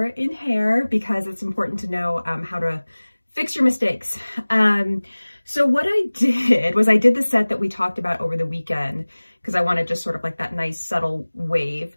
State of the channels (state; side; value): inverted; both; correlation -1.00